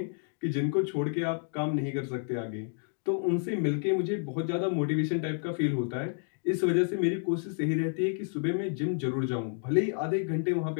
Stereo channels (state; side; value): silent; right; 58 dB below the other